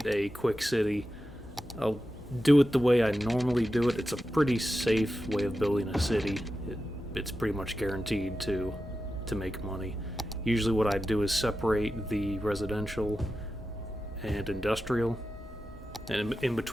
a quick city. I'll do it the way I normally do it. It's a pretty safe way of building a city. It's pretty much guaranteed to make money. Usually what I do is separate the residential and industrial, and in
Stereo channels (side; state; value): both; normal; correlation 0.91